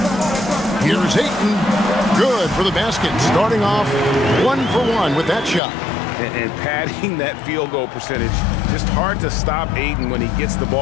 Here's Ayton. Good for the basket. Starting off 1 for 1 with that shot. And padding that field goal percentage. Just hard to stop Ayton when he gets the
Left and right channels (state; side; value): drops out; right; at 5.6 s